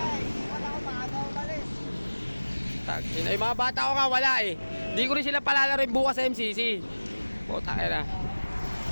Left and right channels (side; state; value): both; inverted; correlation -1.00